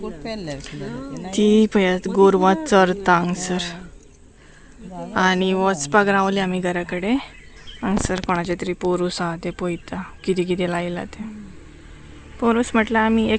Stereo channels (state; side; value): identical; both; correlation 1.00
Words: ती पळयात गोरवां चरता हांगसर आनी वचपाक रावले आमी घरा कडेन हांगसर कोणाचे तरी पोरूस आहा ते पळयता कितें कितें लायला ते पोरूस म्हटल्यार आमी